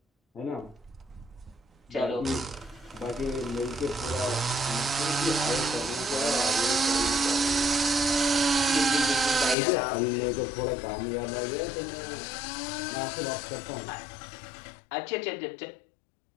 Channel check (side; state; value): right; drops out; at 9.6 s